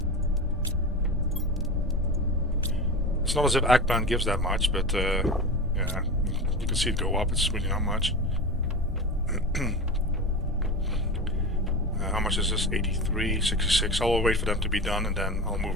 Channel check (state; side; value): normal; both; correlation 0.27